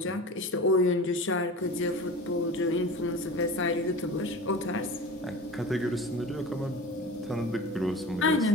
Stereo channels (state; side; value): normal; both; correlation 0.35